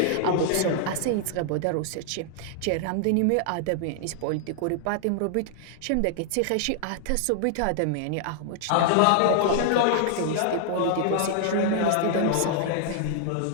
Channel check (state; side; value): different; both; correlation -0.01